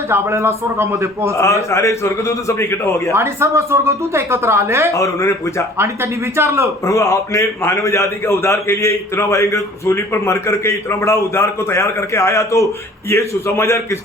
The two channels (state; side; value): normal; both; correlation 0.50